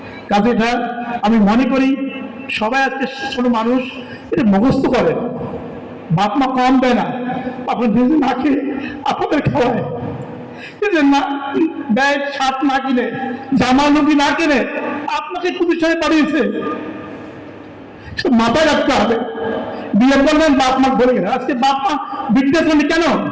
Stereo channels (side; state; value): both; identical; correlation 1.00